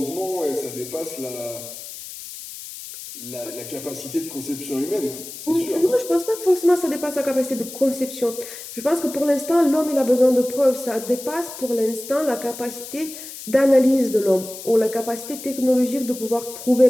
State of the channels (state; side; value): noise; left; hiss, 12 dB below the sound